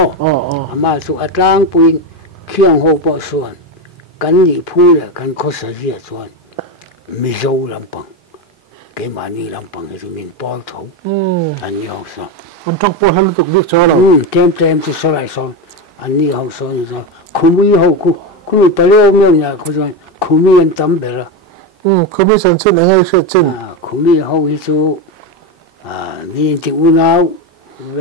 mà chú ăn lang bùn khiang hậu bao số cái gì phu là cái khó xử gì số mi dâu làm bằng cái mà ni làm bằng thì mình bao thấu anh đi học sao anh trong bao hắn tục biết cho là tem chú số lại số anh đi học số như sao không biết học không bao nhiêu miêu nhà không biết anh tắm về rồi không biết sản xuất là ngay sản xuất không biết học cái chú nhìn thì u nào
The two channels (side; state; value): both; normal; correlation 0.15